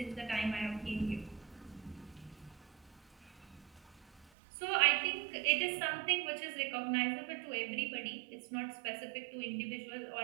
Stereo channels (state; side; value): drops out; left; at 4.3 s